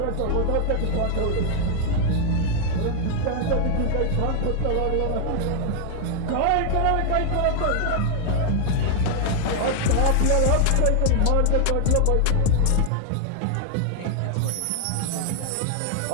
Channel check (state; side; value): different; both; correlation 0.00